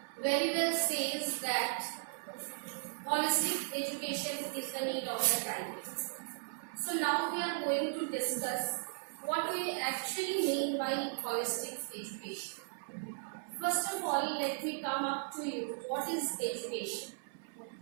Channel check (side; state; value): left; silent; 53 dB below the other